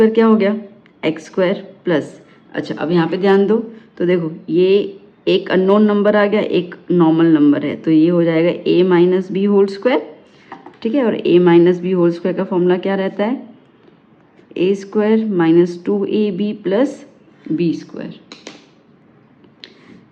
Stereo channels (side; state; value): both; identical; correlation 1.00